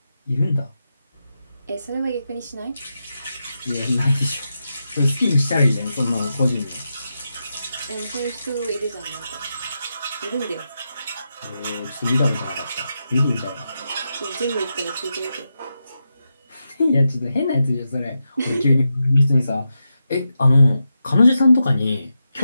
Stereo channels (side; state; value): both; inverted; correlation -0.88